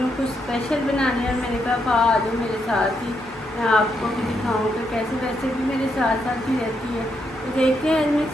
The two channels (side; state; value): both; normal; correlation 0.79